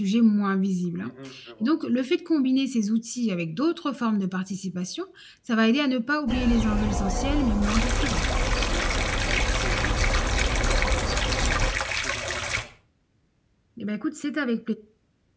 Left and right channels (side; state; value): both; identical; correlation 1.00